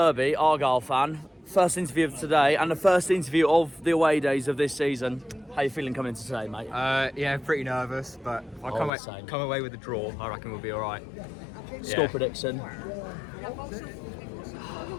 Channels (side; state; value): right; drops out; at 8.9 s